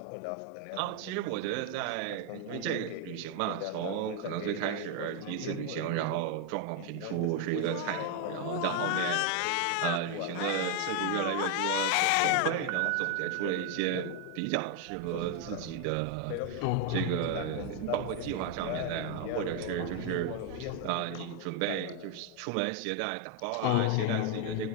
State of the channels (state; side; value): different; both; correlation 0.01